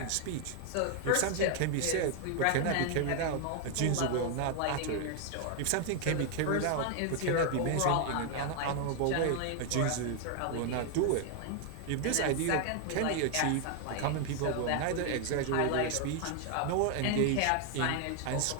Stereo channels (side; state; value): both; different; correlation 0.00